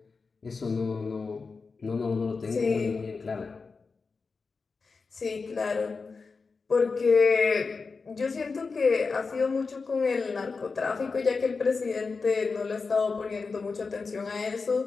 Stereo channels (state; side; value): quieter; right; 4.5 dB